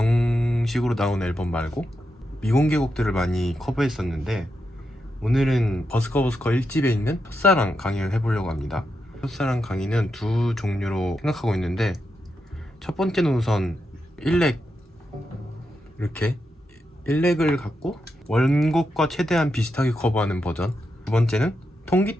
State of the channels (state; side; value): normal; both; correlation 0.85